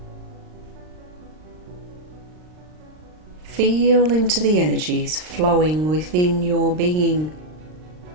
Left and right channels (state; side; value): late; left; 39 ms